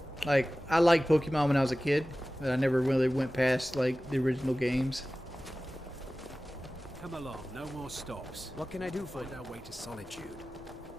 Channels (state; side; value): normal; both; correlation 0.97